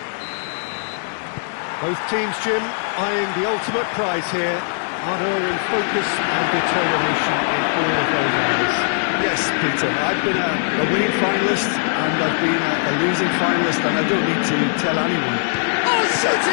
Both teams, Jim, eyeing the ultimate prize here, unerring focus and determination in all of those areas. Yes, Peter, I've been a winning finalist and I've been a losing finalist, and I don't need to tell anyone. Oh,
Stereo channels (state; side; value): silent; right; digital silence